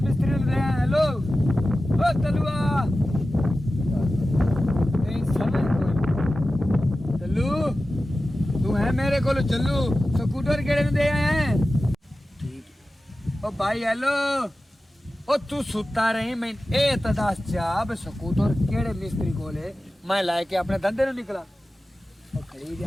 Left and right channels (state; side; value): normal; both; correlation 0.94